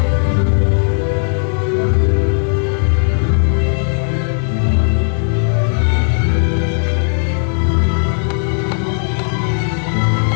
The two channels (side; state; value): right; silent; digital silence